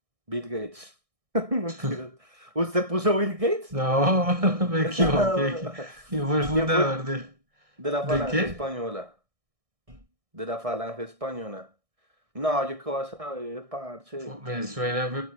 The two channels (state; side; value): late; left; 1.6 ms